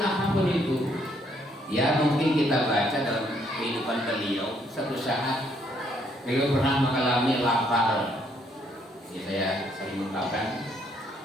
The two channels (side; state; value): both; normal; correlation 0.69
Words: apapun itu. Ya, mungkin kita baca dalam kehidupan beliau, satu saat beliau pernah mengalami lapar. Ya, saya sering mengatakan